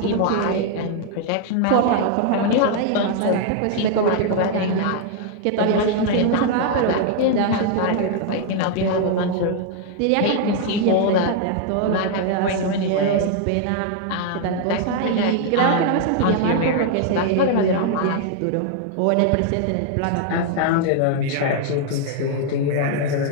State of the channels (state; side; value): different; both; correlation 0.00